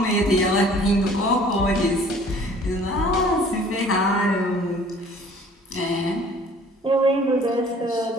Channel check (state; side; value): normal; both; correlation 0.52